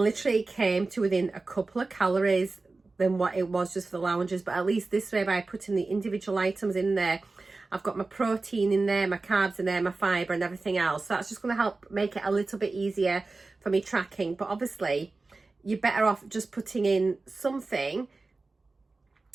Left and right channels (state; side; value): quieter; left; 3.6 dB